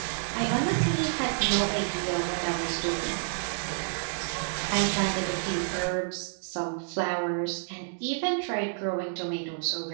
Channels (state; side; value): silent; left; digital silence